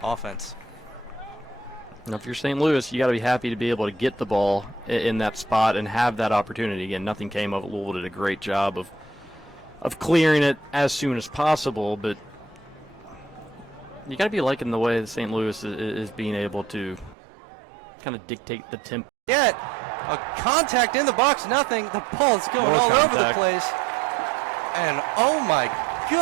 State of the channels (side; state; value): left; drops out; at 17.2 s